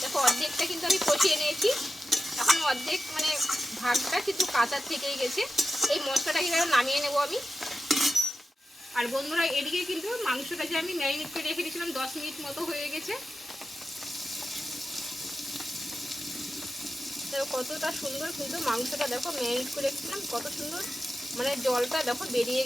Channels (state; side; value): normal; both; correlation 0.91